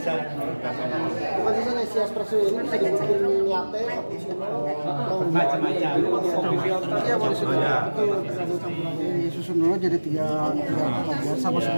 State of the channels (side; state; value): both; inverted; correlation -1.00